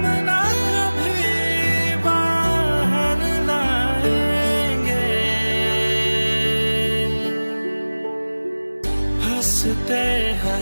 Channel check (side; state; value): both; inverted; correlation -1.00